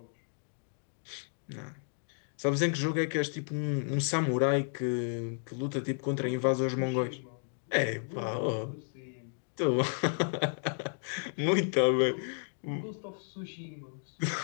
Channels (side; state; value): right; silent; digital silence